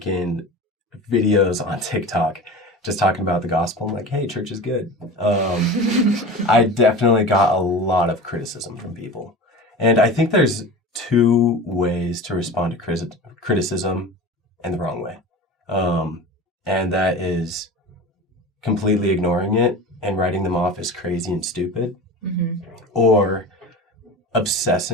videos on TikTok, just talking about the gospel, I'm like, hey, church is good. I definitely got a lot of criticism from people. And I think there's two ways to respond to criticism in the wrong way. And that is completely ignoring it and writing them off as crazy and stupid, or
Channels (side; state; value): both; normal; correlation 0.33